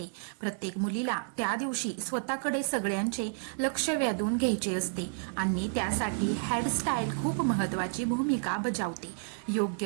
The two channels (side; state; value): left; silent; digital silence